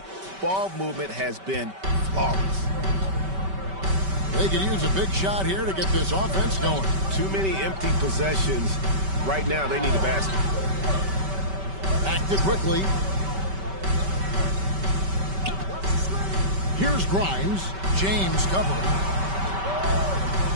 Ball movement has been flawless. They could use a big shot here to get this offense going. Too many empty possessions. Right now, they need a basket. Back to quickly. Here's Grimes. James covering.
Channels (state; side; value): late; left; 5.2 ms